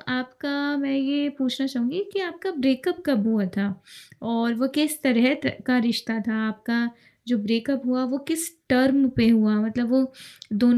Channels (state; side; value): identical; both; correlation 1.00